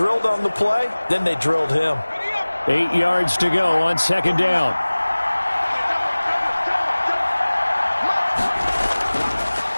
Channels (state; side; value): inverted; both; correlation -1.00